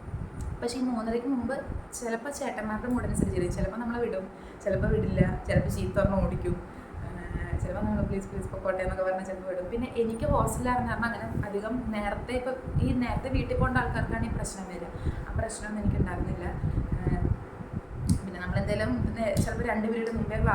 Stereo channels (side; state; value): both; identical; correlation 1.00